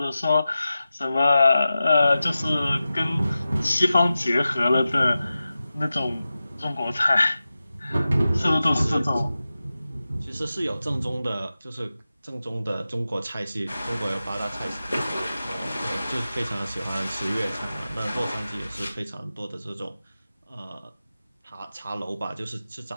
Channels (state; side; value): inverted; both; correlation -0.94